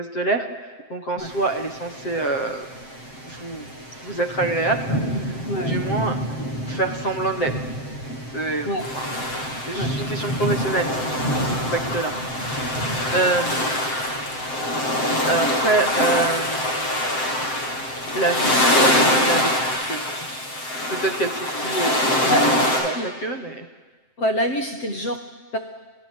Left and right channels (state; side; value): late; right; 7.7 ms